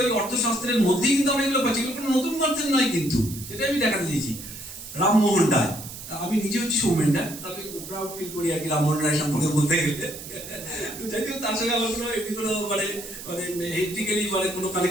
ওই অর্থশাস্ত্রের মধ্যেই কিন্তু আমরা এগুলো পাচ্ছি, এগুলো কোনো নতুন কনসেপ্ট নয় কিন্তু, সেটাই আমি দেখাতে দিয়েছি। রামমোহন রায়, আমি নিজে হচ্ছি সৌমেন রায়, তবে প্রাউড ফিল করি আর কি রামমোহন রায় সম্পর্কে বলতে গেলে। যাই হোক, তার সঙ্গে আমার কোনো এমনি কোনো মানে হেরিটেজিক্যালি মানে কোনো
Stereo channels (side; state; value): right; noise; hiss, 12 dB below the sound